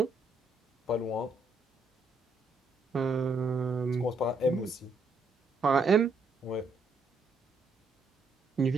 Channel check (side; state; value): left; quieter; 3.2 dB